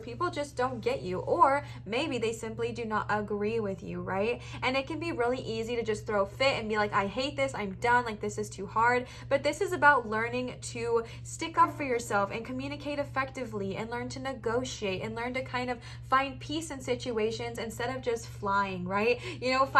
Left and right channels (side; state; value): both; identical; correlation 1.00